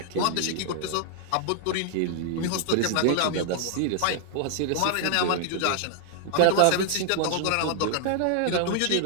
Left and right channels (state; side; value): different; both; correlation 0.00